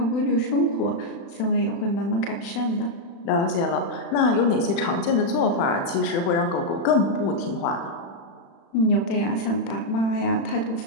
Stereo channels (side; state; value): right; late; 36 ms